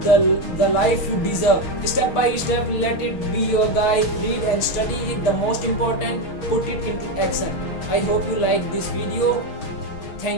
the life you deserve. Step by step, let it be your guide. Read and study it. The most important, put it into action. I hope you like this video.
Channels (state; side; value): late; right; 6.3 ms